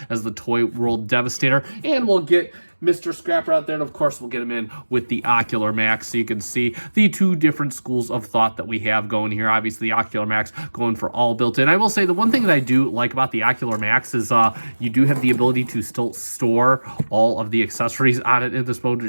as the Toy World Devastator. And we'll get Mr. Scrapper out there, and of course we'll get him in with the Ocular Max, so you can see the 2 different schools of thought that we have going here. Obviously the Ocular Max going for all built in. I will say the one thing that I do like about the Ocular Max is you do have the ability to still store all of the accessories on it in this mode,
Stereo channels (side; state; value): both; inverted; correlation -1.00